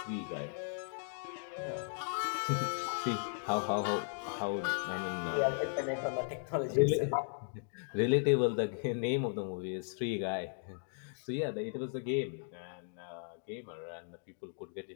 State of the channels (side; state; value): right; silent; digital silence